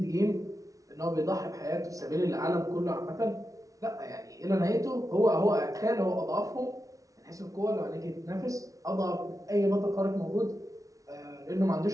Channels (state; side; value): late; left; 0.17 ms